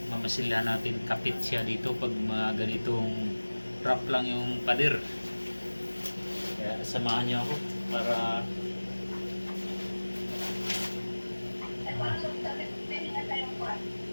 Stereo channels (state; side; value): inverted; both; correlation -1.00